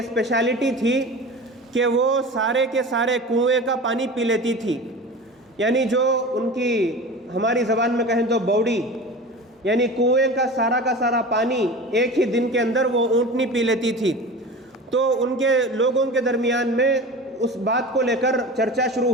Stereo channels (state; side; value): normal; both; correlation 0.34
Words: تھی کہ وہ سارے کے سارے کنویں کا پانی پی لیتی تھی، یعنی جو ان کی ہماری زبان میں کہیں تو بوڑی، یعنی کنویں کا سارا پانی ایک ہی دن کے اندر وہ اونٹنی پی لیتی تھی۔ تو ان کے لوگوں کے درمیان میں اس بات کو لے کر چرچا